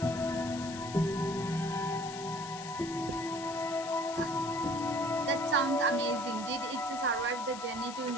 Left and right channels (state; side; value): noise; left; hiss, 12 dB below the sound